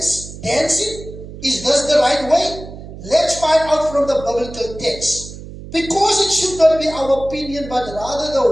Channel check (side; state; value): right; noise; hum, 13 dB below the sound